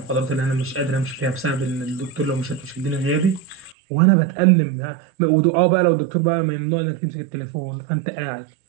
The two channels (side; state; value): left; drops out; at 3.8 s